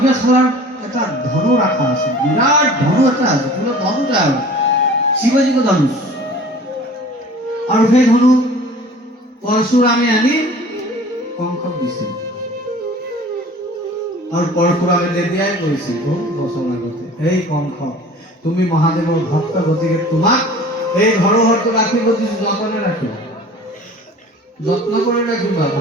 এটা ধনু ৰাখা আছে বিৰাট ধনু এটা আছে পুৰো ধনু যায় শিৱজীক ধনুষ আৰু সেই ধনু পৰশুৰামে আনি কংসক দিছিল আৰু পৰশুৰামে তেতিয়াই কৈছিল বহু বছৰ আগতে এই কংস তুমি মহাদেৱৰ ভক্ত গতিকে তোমাক এই ধৰোহৰটো ৰাখিব দিছো যতনে ৰাখিবা যত্ন করে রাখিবা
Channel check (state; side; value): normal; both; correlation 0.45